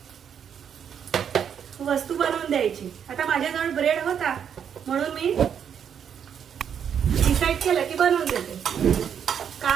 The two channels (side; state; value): left; quieter; 8.1 dB